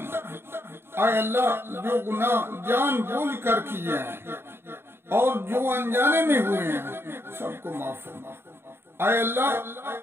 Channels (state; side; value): late; left; 0.11 ms